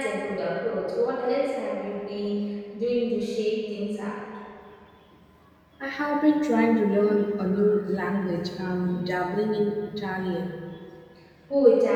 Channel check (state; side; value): identical; both; correlation 1.00